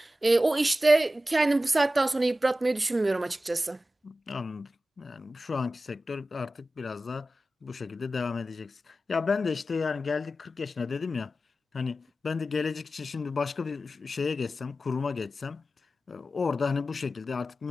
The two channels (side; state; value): both; normal; correlation 0.94